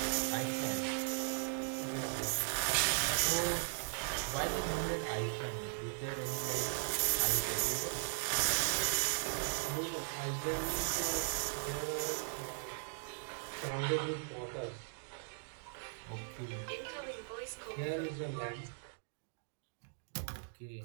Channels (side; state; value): left; silent; digital silence